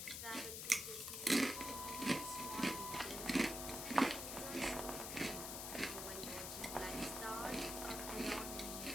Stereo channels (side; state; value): left; noise; hiss, 5 dB below the sound